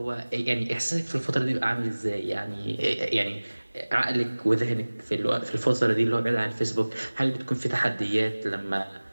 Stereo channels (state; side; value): inverted; both; correlation -1.00